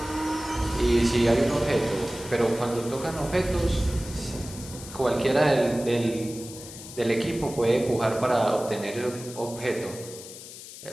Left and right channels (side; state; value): left; noise; hiss, 14 dB below the sound